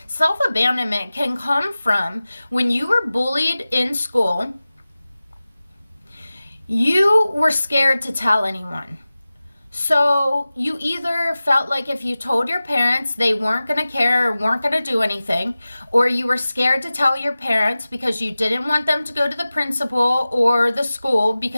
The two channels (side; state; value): both; inverted; correlation -0.96